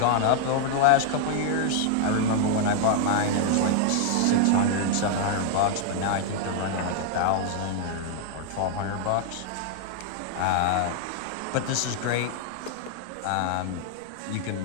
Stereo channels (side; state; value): both; different; correlation 0.00